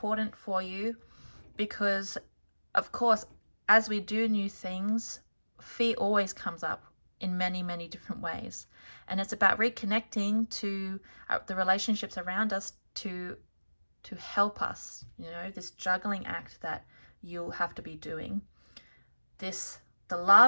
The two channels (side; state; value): both; inverted; correlation -1.00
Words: for you because, of course, as we do new things, fear always comes up in many, many different ways. And it's about reconnecting to the relationships around us to help us, you know, this juggling act that you'll have to be doing. The